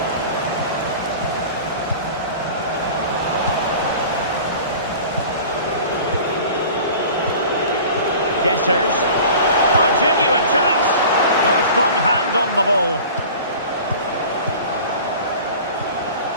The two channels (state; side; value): inverted; both; correlation -0.41